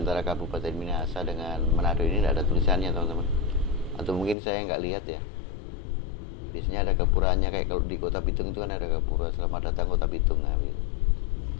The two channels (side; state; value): right; drops out; at 4.4 s